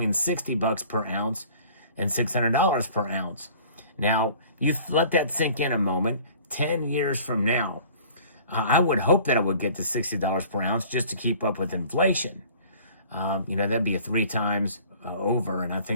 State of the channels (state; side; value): inverted; both; correlation -0.50